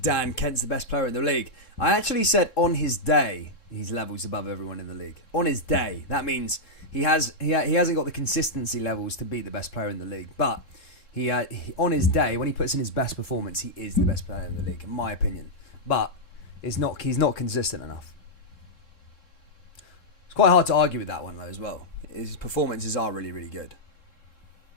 Kent's the best player in the league. I actually said on his day, he's levels above everyone in the league. On his day. That means he hasn't got the consistency levels to be the best player in the league. But he on his day, when he puts in his best performance, he is the best player in the league, in my opinion. But he's not consistent enough. It's quite hard to argue with that one, though, as well. His performances are really, really good.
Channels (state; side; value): late; right; 3.7 ms